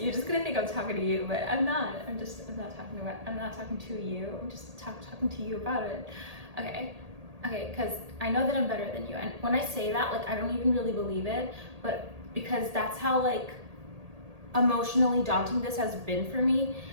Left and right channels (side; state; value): left; late; 1.8 ms